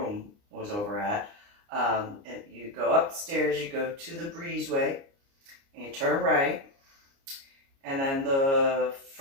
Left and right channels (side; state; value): left; late; 29 ms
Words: was over at, and you go upstairs, you go to the breezeway, and you turn right, and then the